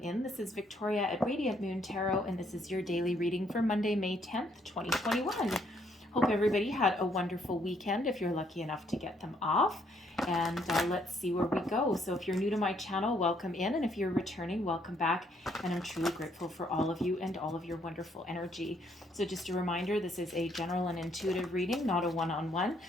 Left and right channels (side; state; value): both; normal; correlation 0.69